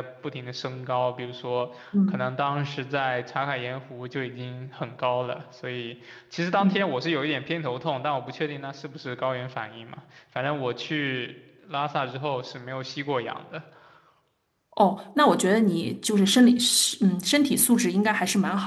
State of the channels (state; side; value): identical; both; correlation 1.00